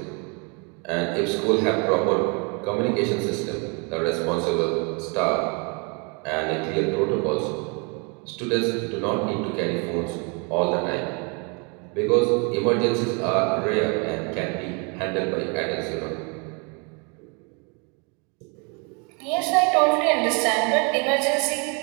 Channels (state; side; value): quieter; left; 33.6 dB